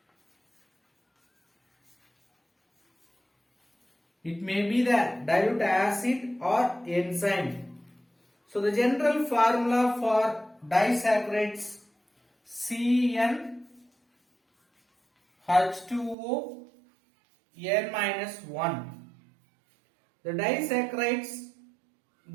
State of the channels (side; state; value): left; drops out; at 16.2 s